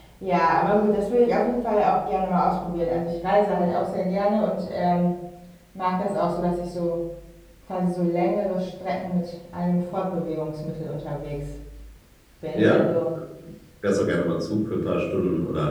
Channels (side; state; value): both; identical; correlation 1.00